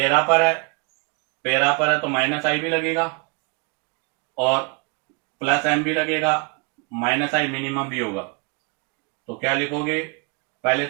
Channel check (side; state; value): left; quieter; 32.0 dB